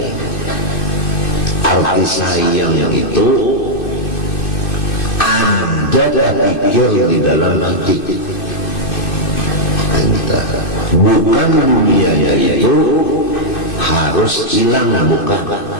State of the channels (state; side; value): late; right; 2.6 ms